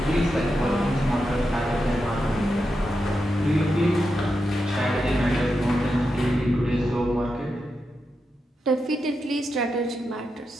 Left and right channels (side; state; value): both; normal; correlation 0.87